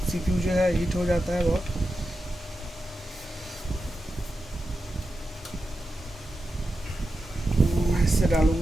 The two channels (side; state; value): both; normal; correlation 0.90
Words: सीपीयू जो है हीट हो जाता है बहुत।